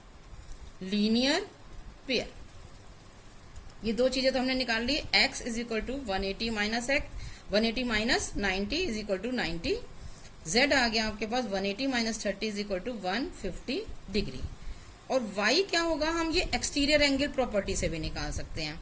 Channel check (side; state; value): both; identical; correlation 1.00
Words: Linear pair. ये दो चीजें तो हमने निकाल ली. x is equal to 180 minus 90 is equal to 90. z आ गया आपके पास 180 minus 30 is equal to 150 degree. और y क्या होगा? हम ये एक्सटीरियर एंगल प्रॉपर्टी से भी निकाल सकते हैं.